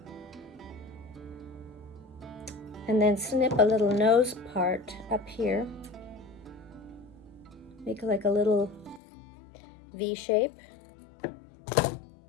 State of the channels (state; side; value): drops out; right; at 9.0 s